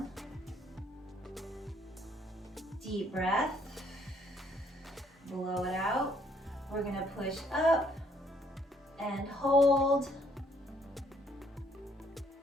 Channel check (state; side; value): normal; both; correlation 0.66